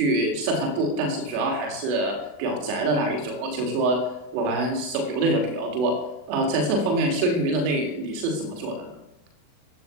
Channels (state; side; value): late; left; 40 ms